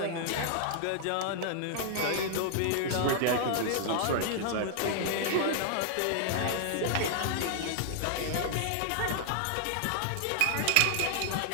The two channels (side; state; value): both; different; correlation 0.00